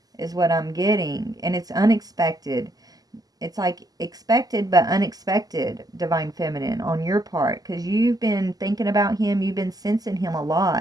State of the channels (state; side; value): late; left; 0.18 ms